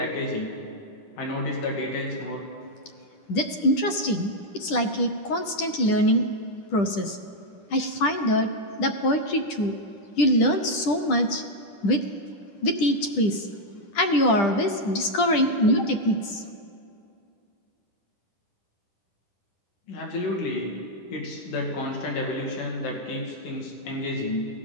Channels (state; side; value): late; right; 10 ms